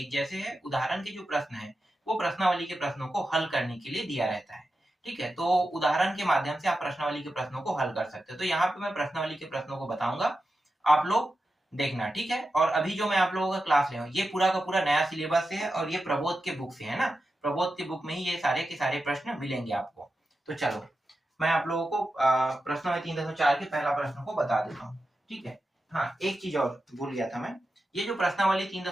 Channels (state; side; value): normal; both; correlation 0.91